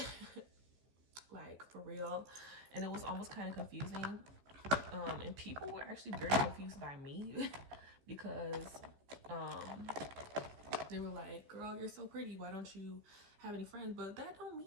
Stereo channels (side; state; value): left; late; 15 ms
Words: Like, for real. And it was almost kind of confusing. And people were actually very confused by me because they were like, girl, you're so pretty, why don't you have any friends? But that don't